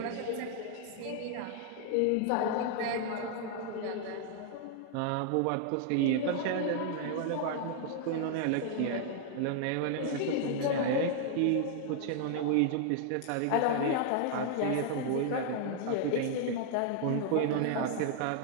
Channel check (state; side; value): different; both; correlation 0.00